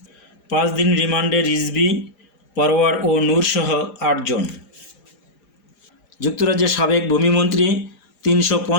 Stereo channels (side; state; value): right; late; 4.9 ms